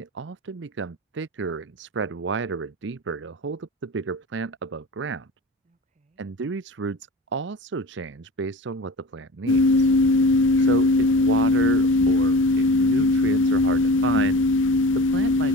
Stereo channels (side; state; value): both; normal; correlation 0.36